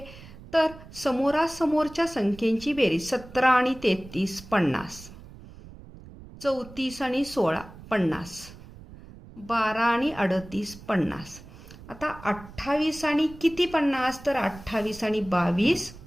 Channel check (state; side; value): noise; right; rumble, 18 dB below the sound